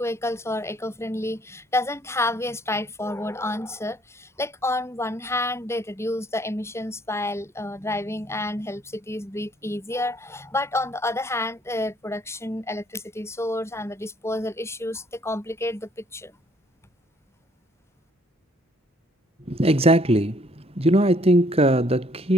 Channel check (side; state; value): both; normal; correlation 0.63